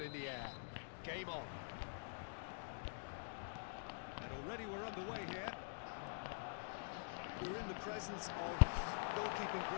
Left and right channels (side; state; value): right; silent; digital silence